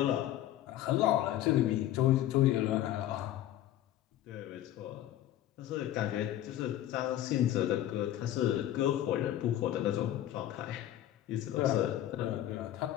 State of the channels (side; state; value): right; quieter; 12.8 dB